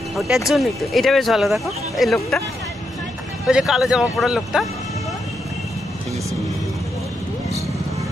জন্যই তো এটা বেশ ভালো। দেখো এই লোকটা, ওই যে কালো জামা পরা লোকটা,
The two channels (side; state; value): both; normal; correlation 0.82